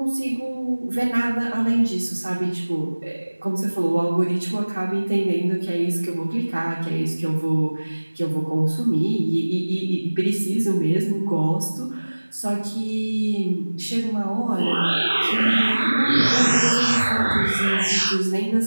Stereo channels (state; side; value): inverted; both; correlation -1.00